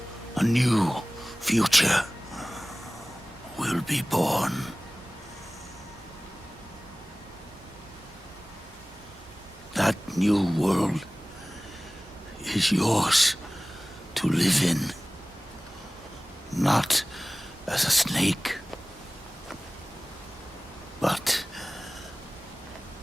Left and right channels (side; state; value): both; normal; correlation 0.98